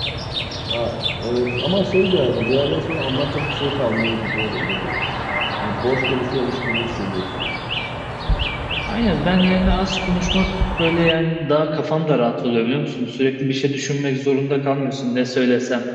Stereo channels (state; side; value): identical; both; correlation 1.00